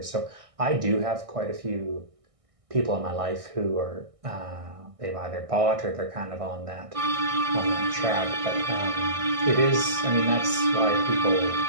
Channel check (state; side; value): late; left; 1.6 ms